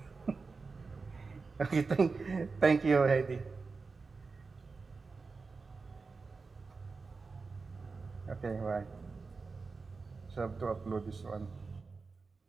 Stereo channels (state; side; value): quieter; left; 4.4 dB